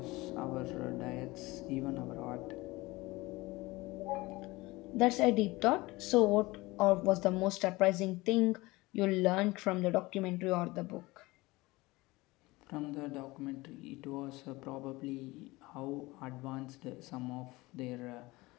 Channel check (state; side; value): quieter; right; 21.3 dB